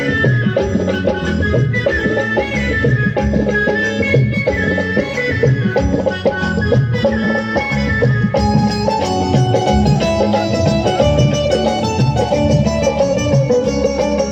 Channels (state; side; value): identical; both; correlation 1.00